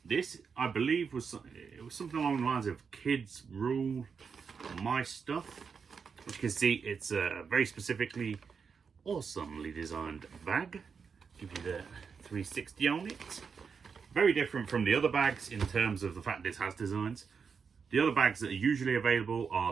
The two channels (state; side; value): quieter; left; 5.9 dB